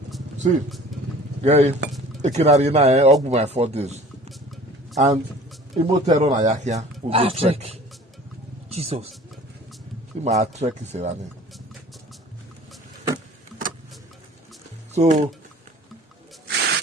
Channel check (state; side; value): normal; both; correlation 0.46